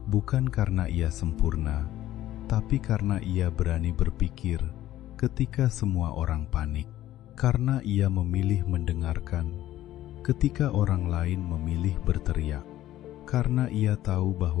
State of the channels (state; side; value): quieter; right; 14.0 dB